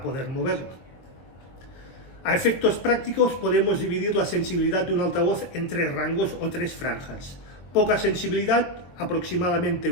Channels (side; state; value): right; late; 22 ms